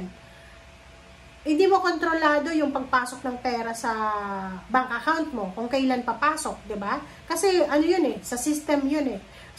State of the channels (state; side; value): identical; both; correlation 1.00